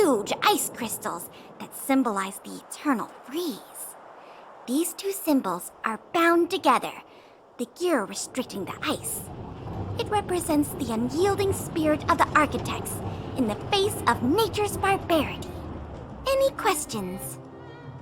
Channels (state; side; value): identical; both; correlation 1.00